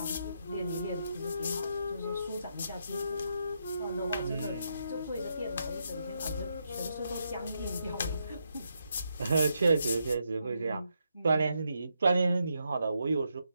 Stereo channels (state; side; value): inverted; both; correlation -0.81